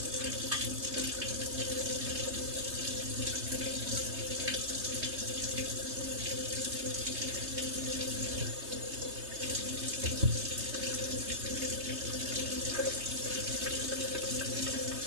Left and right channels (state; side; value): late; left; 3.2 ms